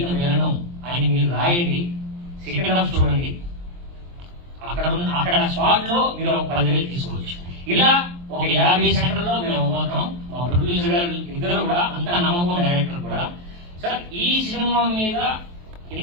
విలను అని మీరు రాయండి. సెకండ్ హాఫ్ చూడండి. అక్కడ స్పాట్ లో మీరు ఒక 10,000 తీసుకోవచ్చు. ఇలా ఒక 50 సెంటర్లో మేము పోతాం. మా ప్రొడ్యూసర్ గారు ఇద్దరు కూడా అంత నమ్మకం, డైరెక్టర్ కూడా. సార్ ఈ సినిమా మీద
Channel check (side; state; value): left; late; 23 ms